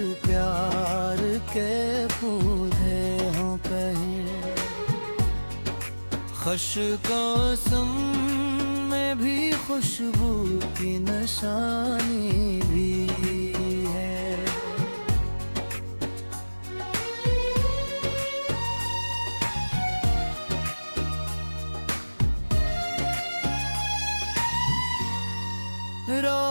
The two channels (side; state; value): both; inverted; correlation -1.00